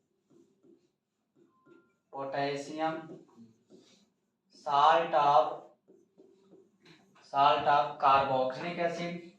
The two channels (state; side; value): identical; both; correlation 1.00